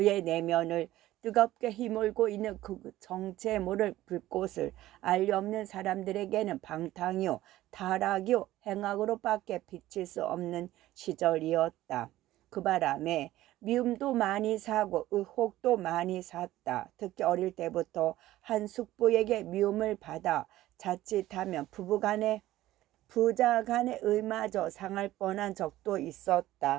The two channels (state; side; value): quieter; left; 15.3 dB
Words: 내면을 뜨겁게 휘몰고 있는 그 정체에 모를 불꽃을 알리 없는 사람들에게는 방탕이요 타락이요 행악으로밖에 비칠 수 없는 시절이었다. 그 바람에 미움도 많이 사고 의혹도 많이 샀다. 특히 어릴 때부터 한 숙부에게 미움을 받아 자칫하면 부자 간의 의마저 상할 뻔한 적도